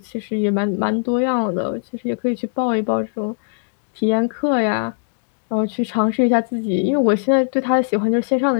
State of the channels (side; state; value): right; silent; digital silence